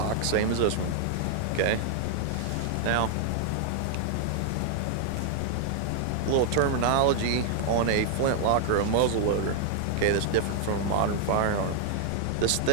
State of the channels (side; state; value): both; different; correlation 0.00